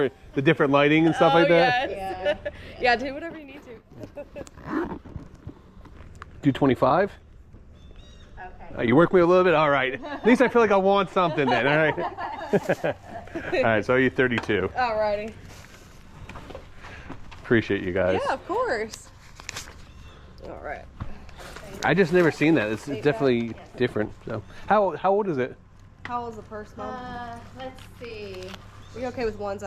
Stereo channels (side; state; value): both; identical; correlation 1.00